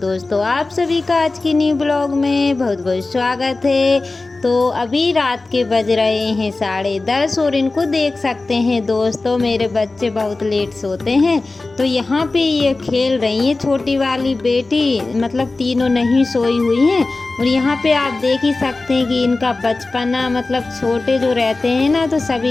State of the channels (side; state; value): right; quieter; 3.4 dB